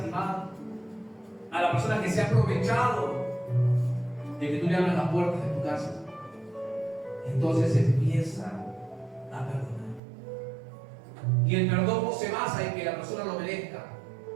a la persona que se ha aprovechado de que tú le abras las puertas de tu casa, entonces empieza a perdonar. Y el perdón no se basa en que la persona lo merezca.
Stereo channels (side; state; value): left; drops out; at 10.0 s